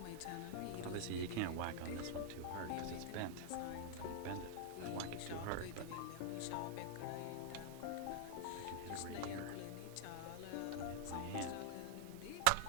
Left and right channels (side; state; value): both; different; correlation -0.01